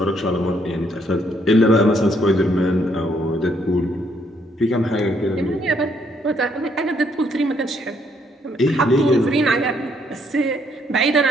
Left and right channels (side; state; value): both; normal; correlation 0.70